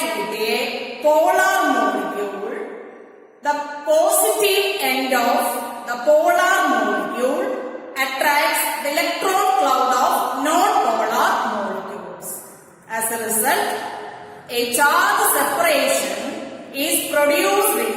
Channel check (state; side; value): identical; both; correlation 1.00